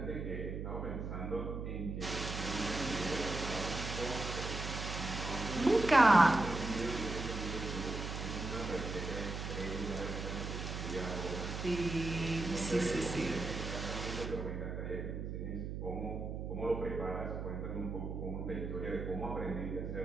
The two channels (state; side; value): noise; right; hum, 5 dB below the sound